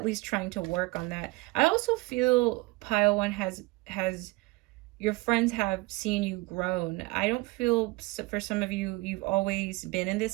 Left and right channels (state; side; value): quieter; left; 22.9 dB